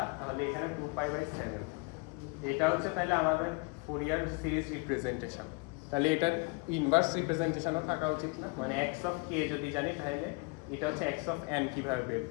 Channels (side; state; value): right; quieter; 29.1 dB